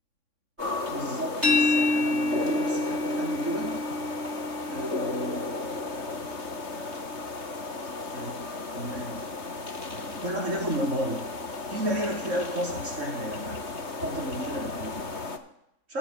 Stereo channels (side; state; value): left; late; 3.2 ms